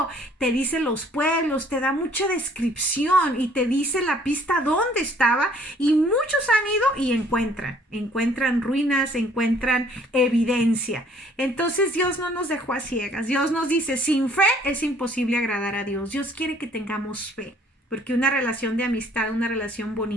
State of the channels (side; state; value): both; normal; correlation 0.59